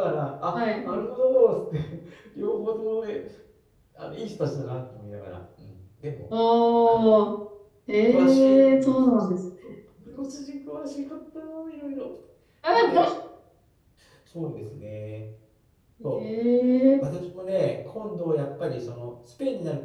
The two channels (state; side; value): identical; both; correlation 1.00